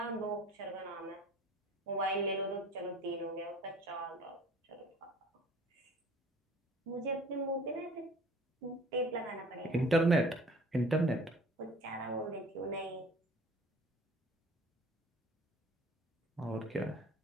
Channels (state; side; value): normal; both; correlation 0.48